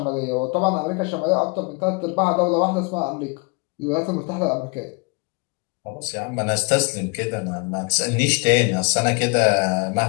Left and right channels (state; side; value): quieter; right; 31.3 dB